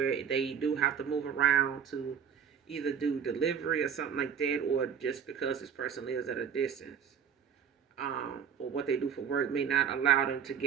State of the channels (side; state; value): left; quieter; 7.7 dB